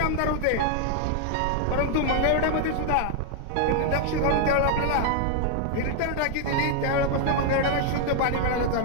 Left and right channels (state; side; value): different; both; correlation 0.00